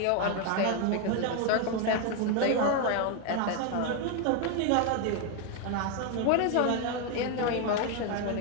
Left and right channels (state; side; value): different; both; correlation 0.01